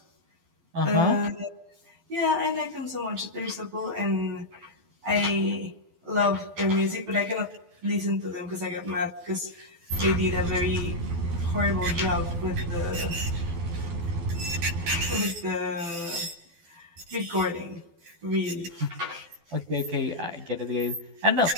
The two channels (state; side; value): late; left; 12 ms